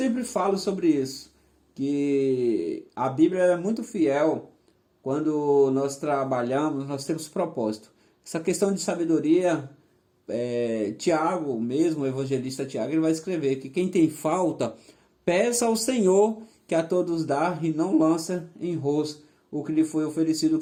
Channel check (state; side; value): identical; both; correlation 1.00